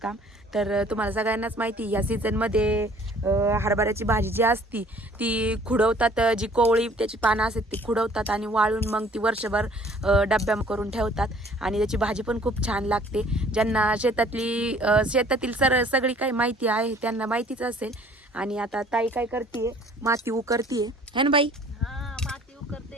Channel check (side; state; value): both; normal; correlation 0.55